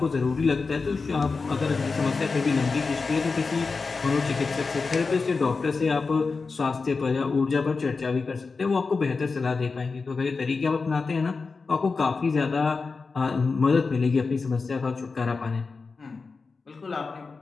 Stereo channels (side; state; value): right; quieter; 4.4 dB